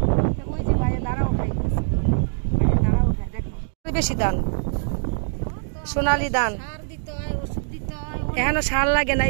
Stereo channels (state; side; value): silent; left; digital silence